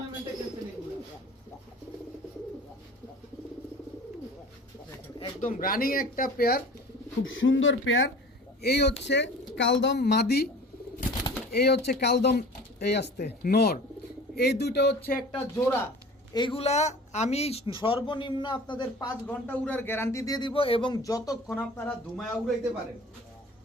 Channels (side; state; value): both; normal; correlation 0.42